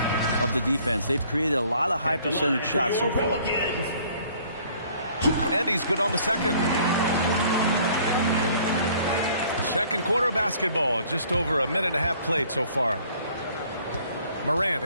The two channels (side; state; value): both; inverted; correlation -0.57